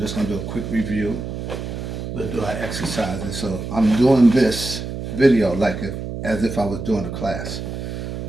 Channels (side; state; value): right; noise; hum, 6 dB below the sound